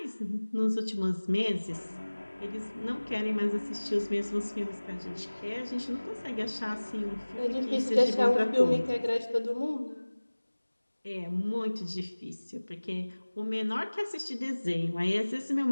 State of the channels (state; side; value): inverted; both; correlation -1.00